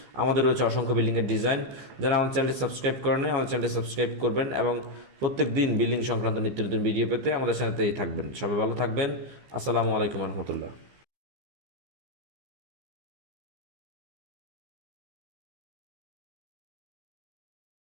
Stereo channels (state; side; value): late; left; 15 ms